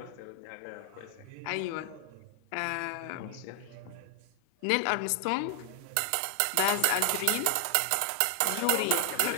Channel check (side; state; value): both; different; correlation 0.00